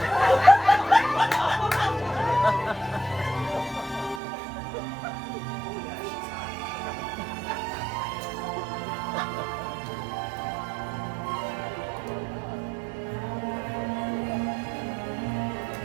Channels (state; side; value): drops out; left; at 4.2 s